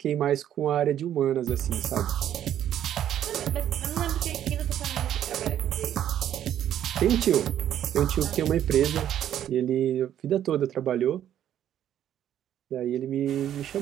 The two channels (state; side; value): quieter; left; 10.8 dB